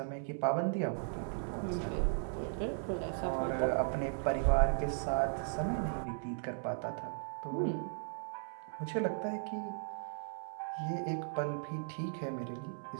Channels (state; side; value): silent; left; 53 dB below the other